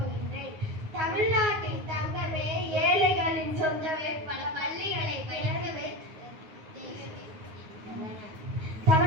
தமிழ்நாட்டின் தங்கமே, ஏழைகளின் சொந்தமே, பல பள்ளிகளை திறந்து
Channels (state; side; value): late; left; 9.5 ms